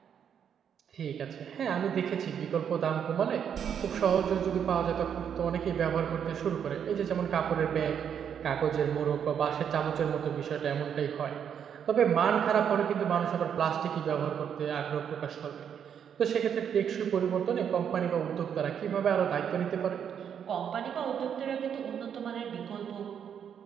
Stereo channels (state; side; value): quieter; left; 8.2 dB